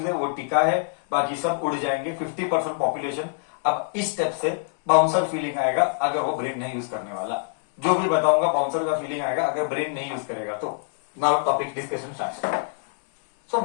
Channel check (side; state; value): right; silent; 62 dB below the other